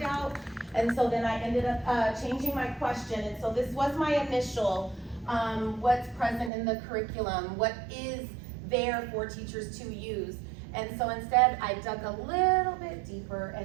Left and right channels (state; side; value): drops out; left; at 6.5 s